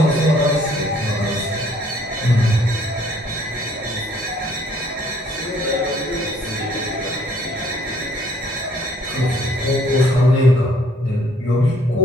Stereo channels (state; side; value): normal; both; correlation 0.61